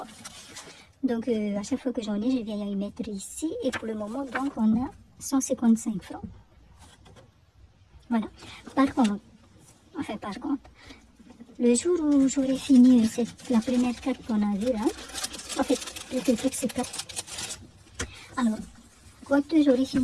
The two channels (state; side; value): identical; both; correlation 1.00